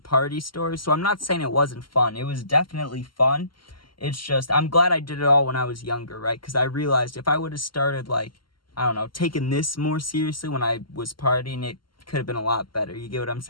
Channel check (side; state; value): right; late; 0.72 ms